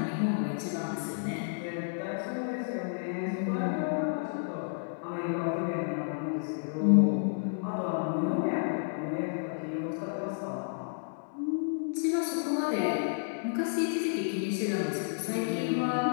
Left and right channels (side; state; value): right; silent; digital silence